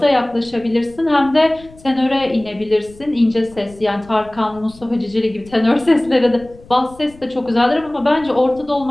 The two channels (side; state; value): left; noise; rumble, 23 dB below the sound